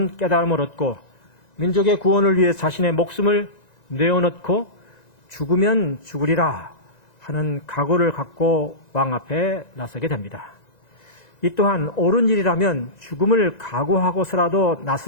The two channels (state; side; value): late; right; 1.9 ms